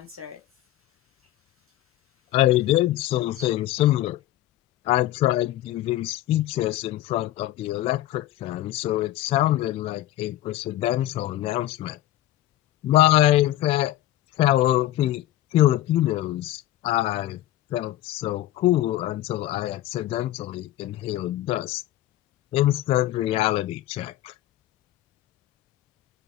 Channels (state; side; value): quieter; right; 14.5 dB